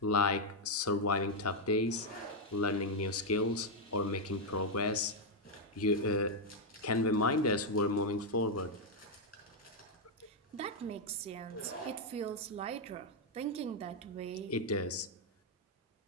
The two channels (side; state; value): both; normal; correlation 0.00